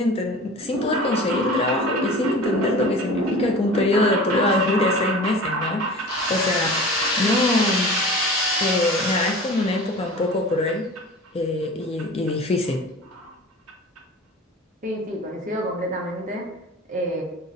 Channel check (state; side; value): normal; both; correlation 0.38